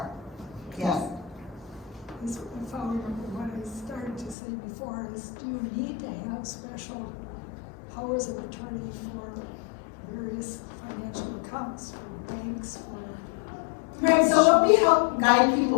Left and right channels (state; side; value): drops out; right; at 4.4 s